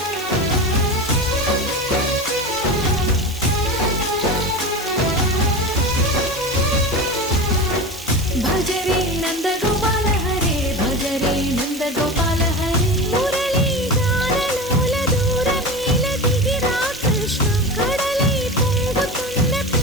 భజరే నందగోపాల హరే భజరే నందగోపాల హరే మురళీ గానలోల దూరమేల దిగిరా కృష్ణ కడలై పొంగుతున్న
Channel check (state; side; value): noise; right; hiss, 16 dB below the sound